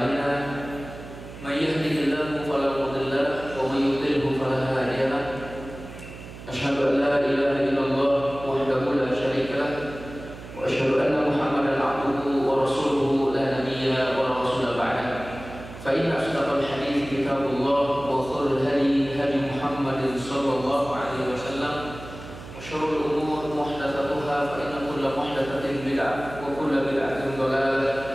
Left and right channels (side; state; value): right; noise; hum, 14 dB below the sound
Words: May yahdihillahu fala mudilla lahu wa may yudlilhu fala hadiya lahu. Asyhadu an la ilaha illallah wahdahu la syarika lahu wa asyhadu anna Muhammadan 'abduhu wa rasuluhu la nabiyya wa la rasula ba'dahu. Fa inna asdaqal hadiits kitabullah wa khairul hadi hadi Muhammadin sallallahu alaihi wasallam. Syurul umur muhdatsatuha fa inna kulla muhdatsatin bid'ah wa kulla bid'atin